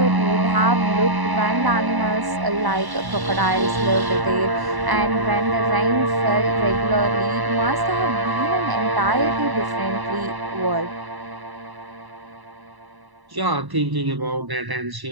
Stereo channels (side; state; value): left; late; 1.0 ms